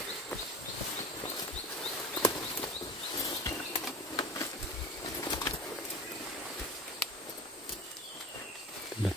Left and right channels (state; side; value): normal; both; correlation 0.36